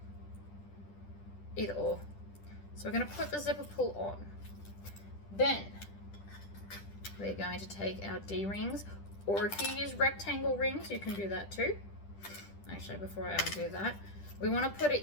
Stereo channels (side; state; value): right; late; 10 ms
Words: Either or. So we're going to put the zipper pull on. Then we're going to take our D-rings, or if you use rectangle rings, you can do that too. Actually, before I undo that, we want to put